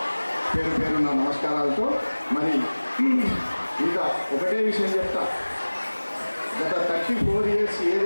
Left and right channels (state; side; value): inverted; both; correlation -1.00